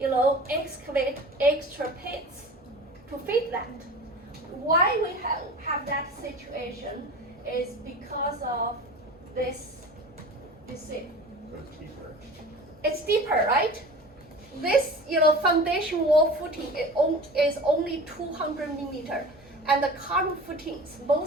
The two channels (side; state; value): both; normal; correlation 0.37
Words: excavate extra pits to fit that. Why we have that situation is because of this. You see, So it's deeper. it's deeper, right? This foundation wall footing is only 200 millimeter, and the column footings,